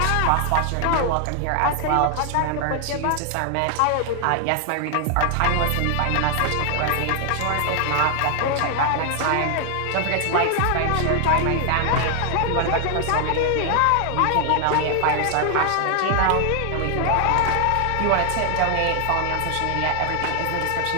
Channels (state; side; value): different; both; correlation 0.00